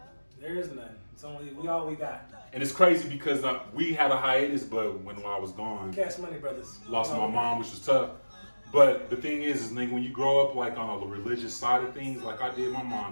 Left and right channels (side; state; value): both; inverted; correlation -1.00